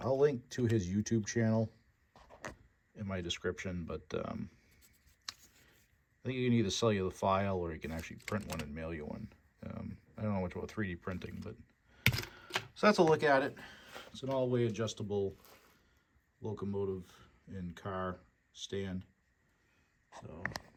I'll link to his YouTube channel in my description, but I think he can either sell you the file or he can actually print one and mail you one. I don't know much about 3D printing, but so that's a look at it. It's an all-way adjustable locomotive and car stand. So,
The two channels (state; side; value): identical; both; correlation 1.00